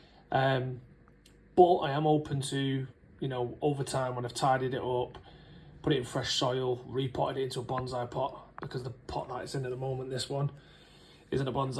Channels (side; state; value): both; identical; correlation 1.00